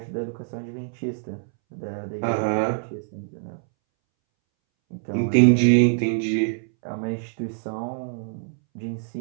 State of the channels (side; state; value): left; silent; 62 dB below the other